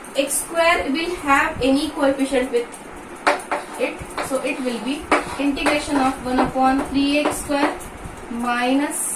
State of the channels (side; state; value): both; identical; correlation 1.00